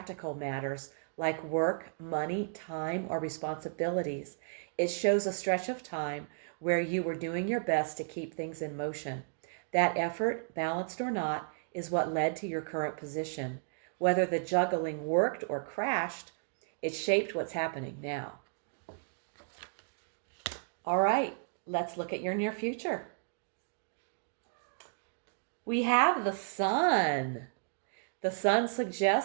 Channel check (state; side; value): silent; left; digital silence